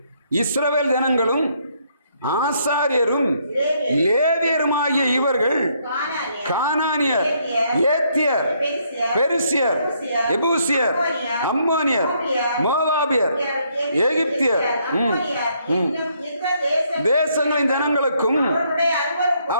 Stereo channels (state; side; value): inverted; both; correlation -0.71